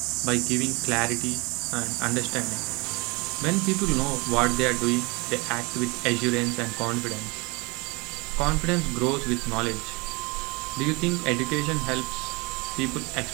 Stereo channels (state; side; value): quieter; left; 27.4 dB